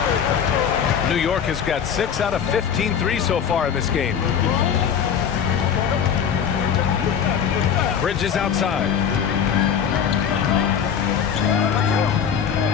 New York has got 6 out of 15 threes so far in this game. Bridges outside.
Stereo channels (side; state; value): right; quieter; 7.8 dB